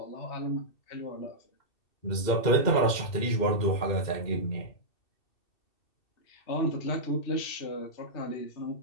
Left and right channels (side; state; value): right; late; 2.7 ms